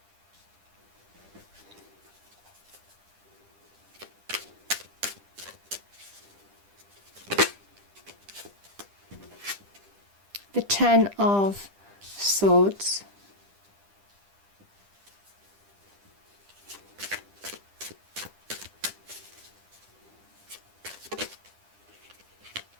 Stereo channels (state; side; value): late; left; 10 ms